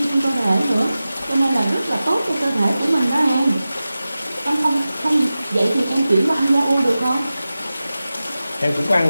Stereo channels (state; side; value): inverted; both; correlation -0.95